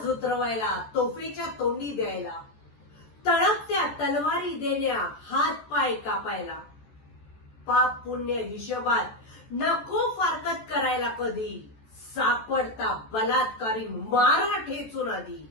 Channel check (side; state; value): right; late; 14 ms